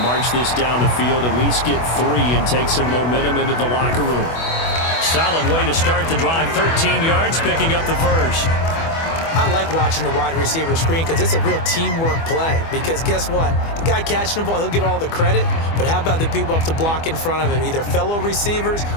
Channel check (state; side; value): late; right; 24 ms